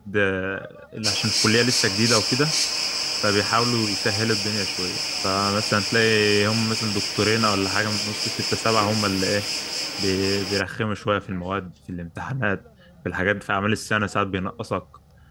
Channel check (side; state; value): both; identical; correlation 1.00